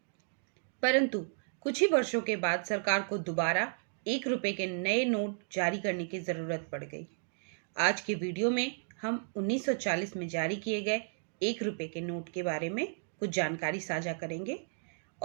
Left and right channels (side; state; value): left; silent; digital silence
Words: परंतु कुछ ही वर्षों के बाद सरकार को दोबारा 1 रुपए के नए नोट जारी करने की जरूरत पड़ गई। आज के वीडियो में हम 1940 में जारी किए गए 1 रुपए के नोट के बारे में कुछ जानकारी साझा करेंगे